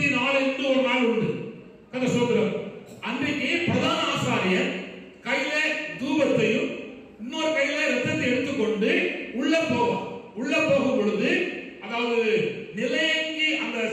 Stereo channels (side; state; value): both; identical; correlation 1.00